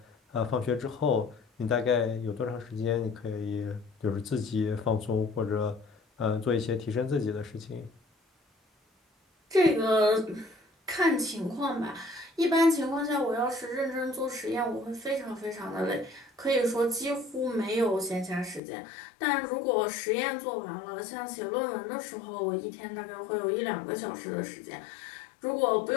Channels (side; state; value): right; drops out; at 18.6 s